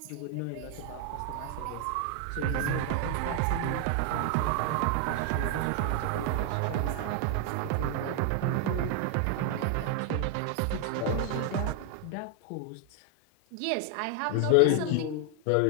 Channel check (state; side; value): different; both; correlation 0.01